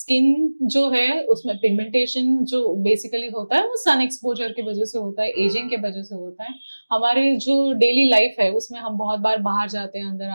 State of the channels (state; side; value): inverted; both; correlation -1.00